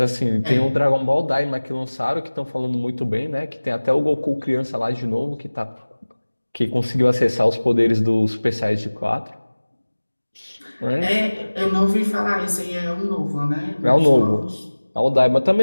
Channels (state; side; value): inverted; both; correlation -1.00